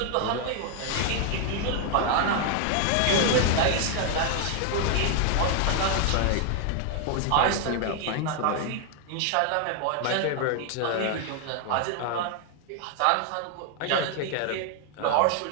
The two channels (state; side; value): different; both; correlation 0.00